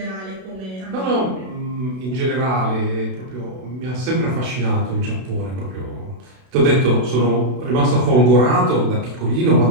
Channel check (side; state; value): left; late; 32 ms